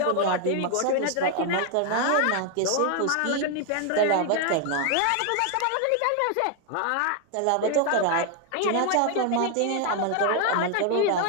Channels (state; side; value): different; both; correlation 0.00